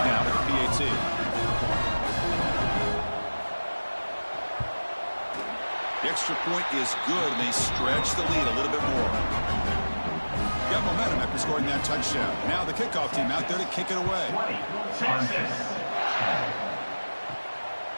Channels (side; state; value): both; inverted; correlation -1.00